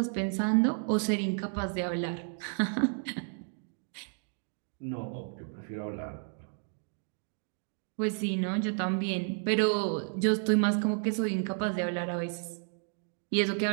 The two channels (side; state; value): left; silent; 55 dB below the other